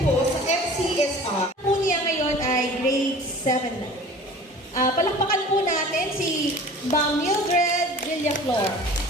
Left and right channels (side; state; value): both; normal; correlation 0.43